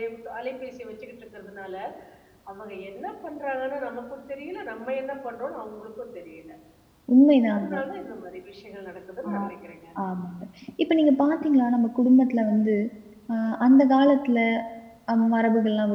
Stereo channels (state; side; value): identical; both; correlation 1.00